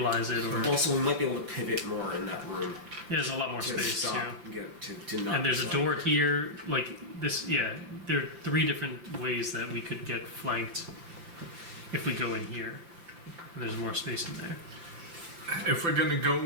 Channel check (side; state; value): left; late; 5.8 ms